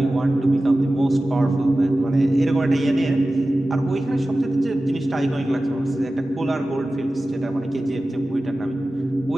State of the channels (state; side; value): normal; both; correlation 0.95